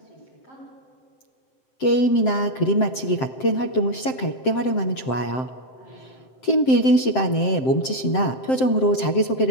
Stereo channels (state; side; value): late; right; 7.7 ms